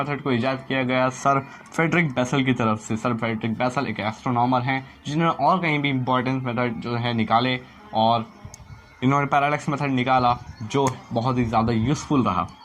को इजाद किया गया सर फ्रेडरिक बेसल की तरफ से। सर फ्रेडरिक बेसल एक एस्ट्रोनॉमर हैं जिन्होंने और कहीं भी इंपॉर्टेंट मेथड जो है निकाले, और इन्होंने पैरालैक्स मेथड निकाला जो बहुत ही ज़्यादा यूज़फुल रहा।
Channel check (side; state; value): both; identical; correlation 1.00